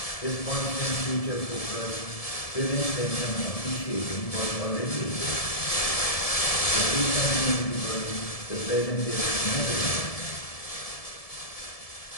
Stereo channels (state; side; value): late; right; 1.7 ms